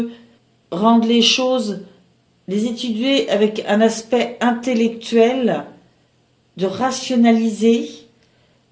rendre les choses, les étudier avec un aspect intellectuel, de rationaliser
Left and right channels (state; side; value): identical; both; correlation 1.00